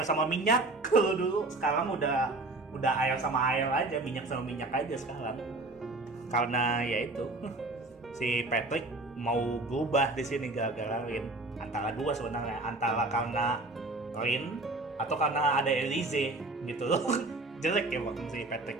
sama minyak. Kalau dulu, sekarang udah air sama air aja, minyak sama minyak aja sekarang. Karena ya itu, si Patrick mau berubah di sini gara-gara Rin. Antara dua sebenarnya, antara karena Rin atau karena ada Elise gitu loh. Jelek ya waktu si Patrick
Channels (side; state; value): left; quieter; 3.0 dB